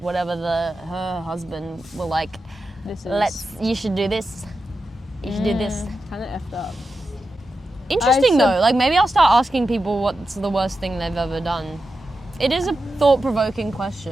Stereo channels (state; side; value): normal; both; correlation 0.90